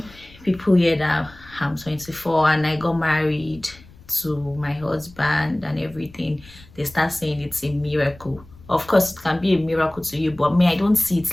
people hear that I'm 24 and I got married to my husband and everything, they start saying it's a miracle. Of course, it can be a miracle to you, but me, I don't see it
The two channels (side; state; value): left; noise; rumble, 23 dB below the sound